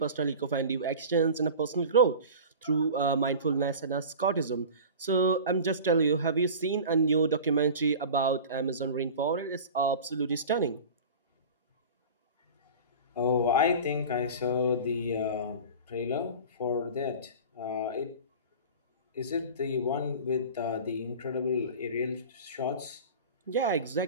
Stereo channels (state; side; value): inverted; both; correlation -0.35